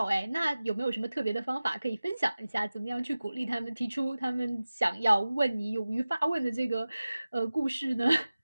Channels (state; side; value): inverted; both; correlation -0.97